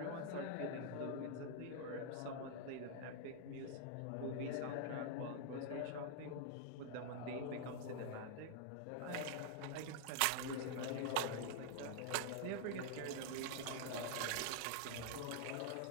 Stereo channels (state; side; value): different; both; correlation -0.01